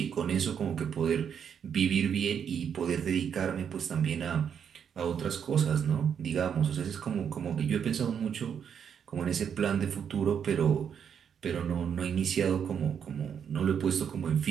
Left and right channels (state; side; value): quieter; left; 7.8 dB